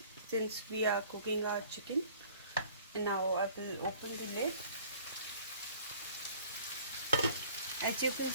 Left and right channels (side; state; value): both; inverted; correlation -0.51